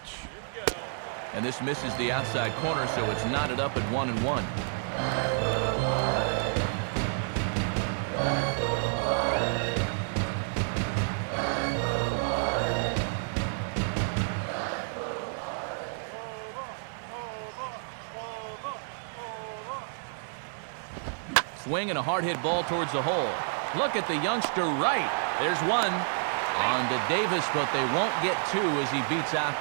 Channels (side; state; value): left; silent; digital silence